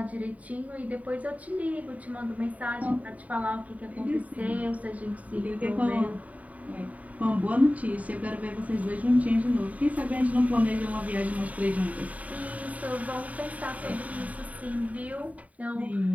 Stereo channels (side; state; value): left; late; 0.070 ms